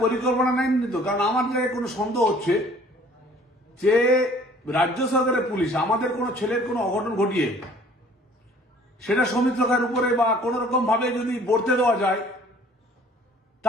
পরিকল্পনা নেয়নি তো। কারণ আমার জায়গায় কোনো সন্দেহ হচ্ছে যে রাজ্য সরকারের পুলিশ আমাদের কোনো ছেলের কোনো অঘটন ঘটিয়ে সেটা সৌমিত্র খায়ের উপরে বা কোন রকম ভাবে যদি বর্তে দেওয়া যায়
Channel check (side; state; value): both; normal; correlation 0.54